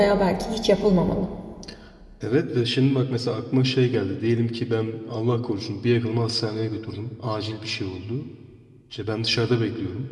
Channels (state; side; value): identical; both; correlation 1.00